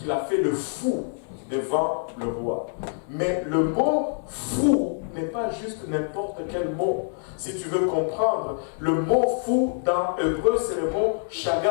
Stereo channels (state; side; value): silent; right; 61 dB below the other